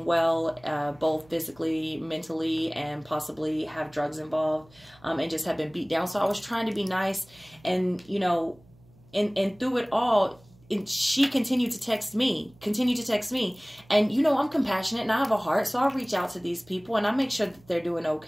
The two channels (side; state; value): right; noise; hum, 27 dB below the sound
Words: well, both physically, mentally, and possibly have drugs involved, and just have been beat down. So I was trying to be nice, and you know, and through it all, she continued to text me, and you know, I'm compassionate and I have a heart, so I'll reach out to these people and I make sure that they're doing